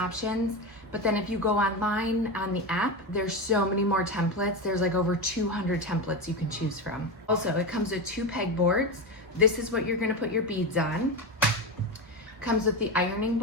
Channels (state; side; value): normal; both; correlation 0.17